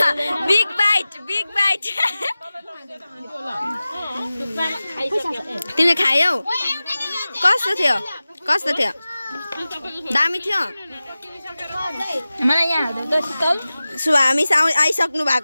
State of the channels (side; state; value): both; inverted; correlation -0.97